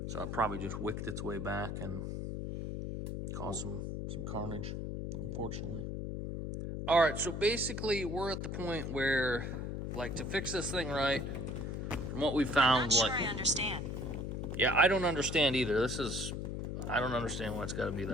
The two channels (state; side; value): noise; left; hum, 4 dB below the sound